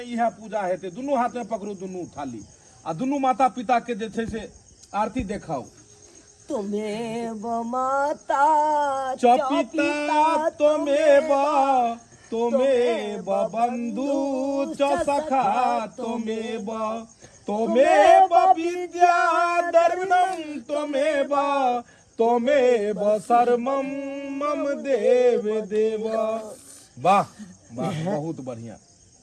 इएह पूजा हेतै। दुनू हाथ में पकड़ू दुनू थाली, आ दुनू माता पिता के जे छै से आरती देखाओ। तुम्हें माता चपिता तुम्हें बंधु सखा तुम्हें विद्या दर्शनम तुम्हें शर्मम मम देव। वाह वाह, बहुत बढ़िया।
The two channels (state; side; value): identical; both; correlation 1.00